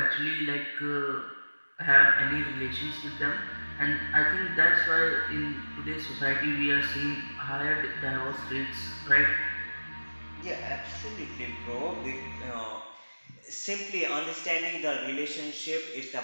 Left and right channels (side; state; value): both; inverted; correlation -1.00